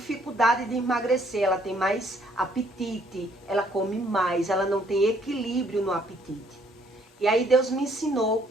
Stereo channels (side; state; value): both; normal; correlation 0.65